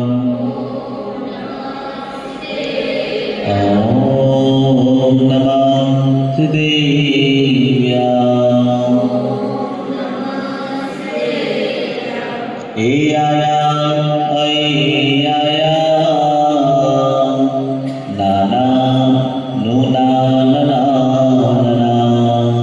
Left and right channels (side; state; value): both; identical; correlation 1.00